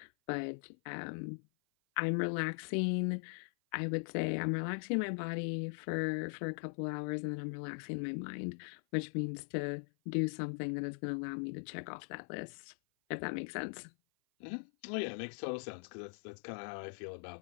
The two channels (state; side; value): silent; right; 51 dB below the other